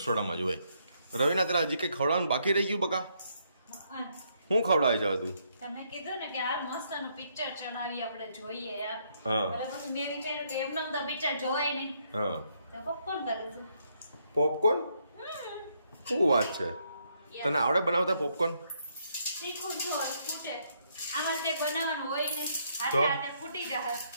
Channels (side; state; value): both; inverted; correlation -0.73